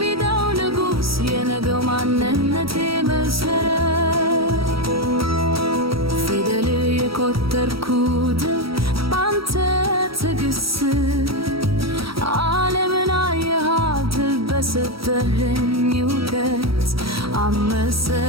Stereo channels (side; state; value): left; late; 0.75 ms